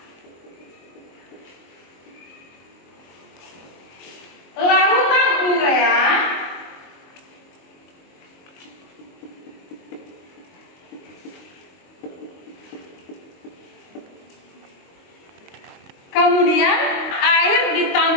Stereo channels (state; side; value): late; right; 22 ms